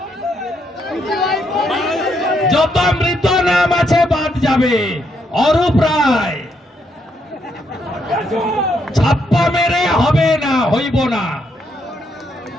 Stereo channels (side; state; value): both; normal; correlation 0.76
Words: যত মৃত নাম আছে বাদ যাবে। অরূপ রায় ছাপ্পা মেরে হবে না, হইব না।